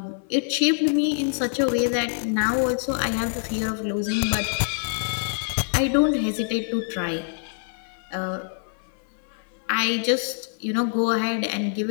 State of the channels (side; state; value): right; silent; 62 dB below the other